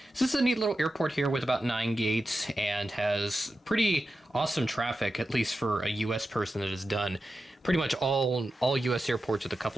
So this is a neat little airport here with about 9 gates and has pretty awesome traffic, at least for a U.S. person that has done pretty much all U.S. airports with a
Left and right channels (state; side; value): normal; both; correlation 0.91